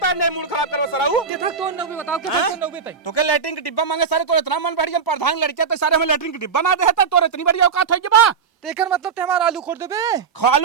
तार नहीं मूड खराब करो सराऊ कितना तो नौबे बताओ कितना नौबे तई तो के लैट्रिन के डिब्बा मांगे सारे तो इतना मन बढ़ हम प्रधान लड़के तो सारे हमें लैट्रिन के डिब्बा ना दे है तो इतनी बड़ी औकात है बा तेकर मतलब ते हमारा आलू खोद देबे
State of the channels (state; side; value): quieter; left; 5.9 dB